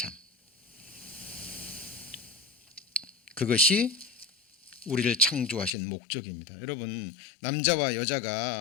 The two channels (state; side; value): drops out; right; at 5.7 s